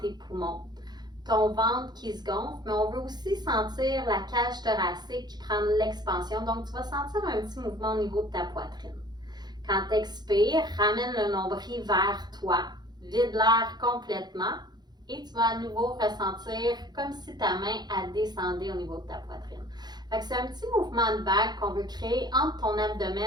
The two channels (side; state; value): left; late; 0.20 ms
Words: poumons, ton ventre qui se gonfle, mais on veut aussi sentir la cage thoracique qui prend de l'expansion. Donc, tu vas sentir un petit mouvement au niveau de ta poitrine. Quand tu expires, ramène le nombril vers toi, vide l'air complètement et tu vas à nouveau ressentir comme si ta main a descendu au niveau de ta poitrine. Fait que c'est un petit mouvement de vague qu'on veut créer entre ton